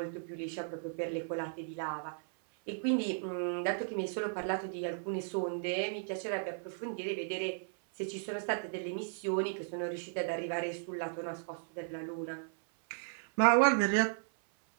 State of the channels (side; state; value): left; silent; 54 dB below the other